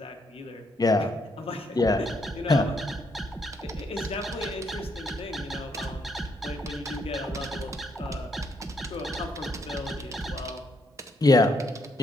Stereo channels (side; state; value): both; normal; correlation 0.74